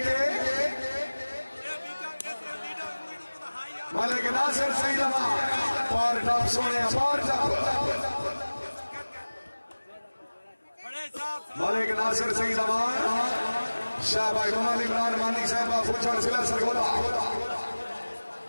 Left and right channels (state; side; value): inverted; both; correlation -1.00